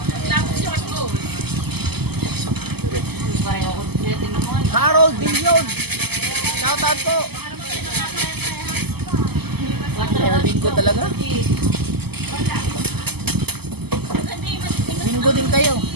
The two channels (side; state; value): left; late; 0.97 ms